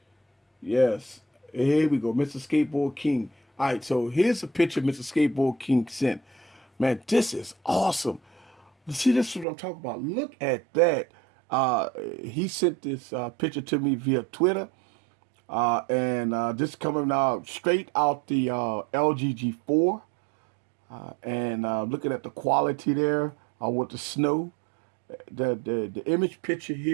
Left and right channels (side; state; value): left; drops out; at 9.5 s